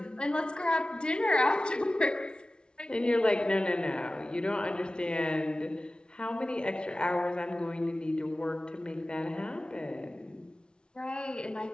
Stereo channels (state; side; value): late; right; 0.055 ms